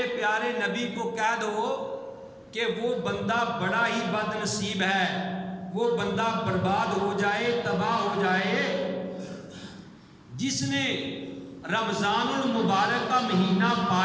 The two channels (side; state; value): both; identical; correlation 1.00